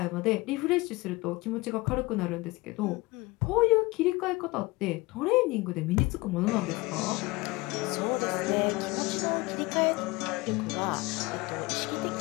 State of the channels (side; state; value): right; quieter; 22.8 dB